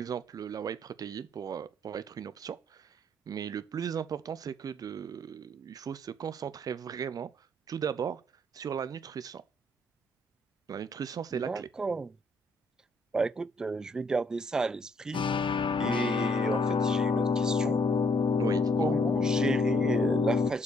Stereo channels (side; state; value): both; normal; correlation 0.68